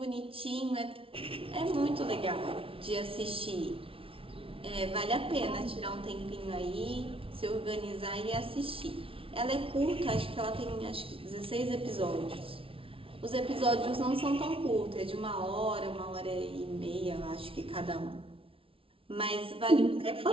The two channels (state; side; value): late; left; 0.26 ms